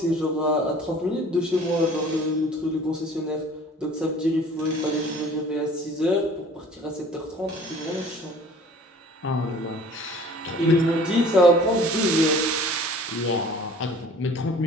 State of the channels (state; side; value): normal; both; correlation 0.49